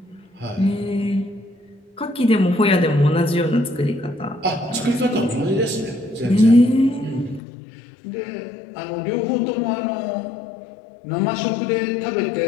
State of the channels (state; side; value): drops out; right; at 7.4 s